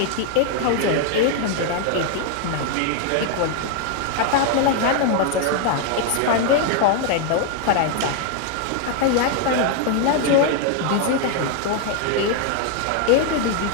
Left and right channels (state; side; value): different; both; correlation 0.00